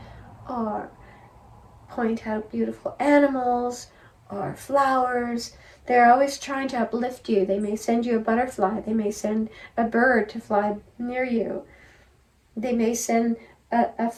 or point out beautiful animals or flowers. They're always trying to uplift you. They may send you a butterfly. They may send a bird to fly near you. They may send a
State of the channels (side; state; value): both; identical; correlation 1.00